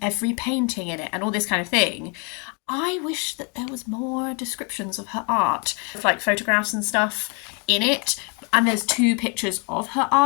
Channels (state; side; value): quieter; right; 35.3 dB